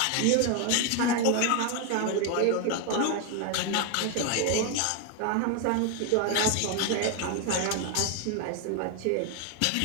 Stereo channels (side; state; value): both; different; correlation 0.01